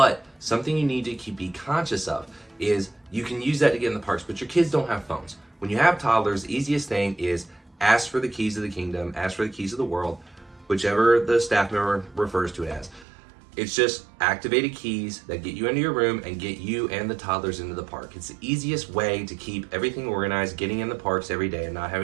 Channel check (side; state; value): left; drops out; at 13.1 s